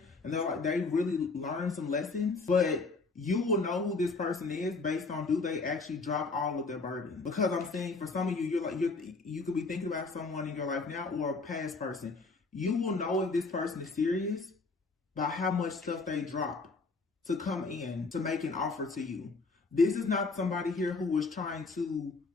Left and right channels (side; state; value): right; quieter; 3.9 dB